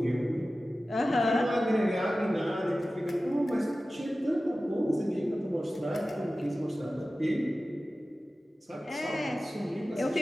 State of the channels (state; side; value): normal; both; correlation 0.95